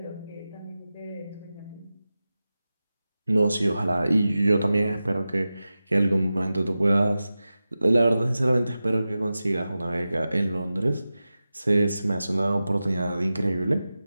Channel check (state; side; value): inverted; both; correlation -0.94